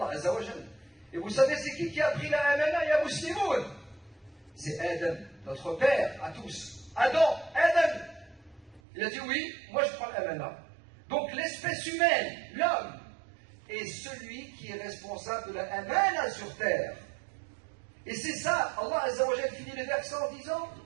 Azza wa Jal. Et vous savez, c'est qui a pris la amana? Ya Muslimoun. C'est Adam, notre père à tous. Adam. Il a dit oui, moi je prends l'amana. Donc l'espèce humaine, l'homme, est celui qui est responsable de la amana sur terre. Et c'est ça, Allah Azza wa Jal finit le verset en disant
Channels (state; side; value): drops out; left; at 8.8 s